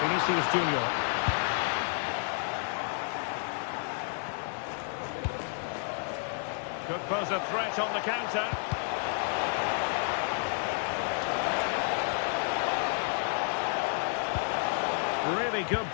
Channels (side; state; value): right; silent; 57 dB below the other